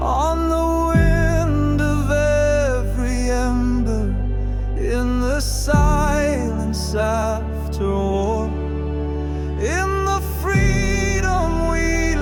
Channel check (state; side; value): identical; both; correlation 1.00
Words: the wind of every ember, in the silence after war, in the freedom we